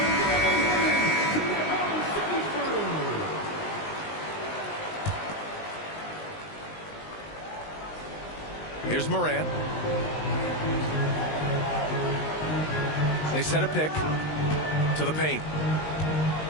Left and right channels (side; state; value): right; late; 19 ms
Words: Here's Morant. They set a pick to the paint.